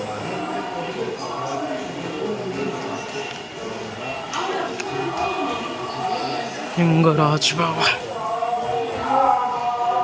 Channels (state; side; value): identical; both; correlation 1.00